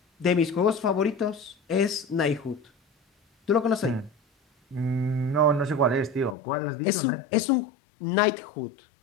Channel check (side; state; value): right; drops out; at 6.4 s